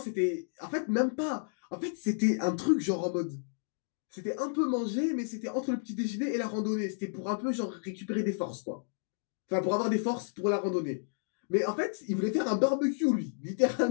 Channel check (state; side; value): silent; right; digital silence